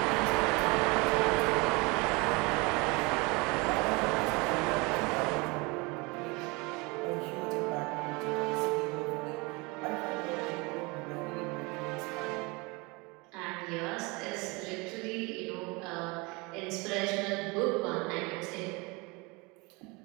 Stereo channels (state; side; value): quieter; left; 26.6 dB